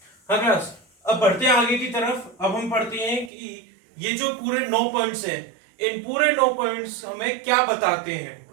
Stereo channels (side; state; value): left; drops out; at 3.3 s